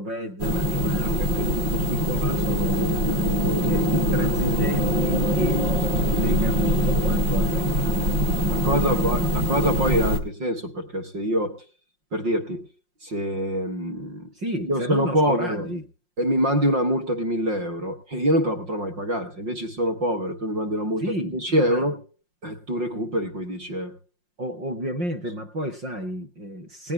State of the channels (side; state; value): left; late; 5.6 ms